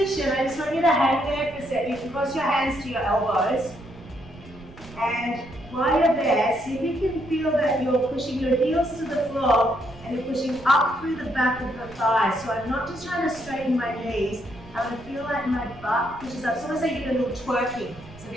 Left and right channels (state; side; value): noise; right; rumble, 19 dB below the sound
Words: I just want you to hang there for a second. You can cross your hands to your elbows. And while you're there, see if you can feel that you're pushing your heels to the floor and you're pushing up through the back of the thighs. So I'm not just trying to straighten my knees, I want to feel like my butt pushes up. It's almost like you're doing a little twerking. So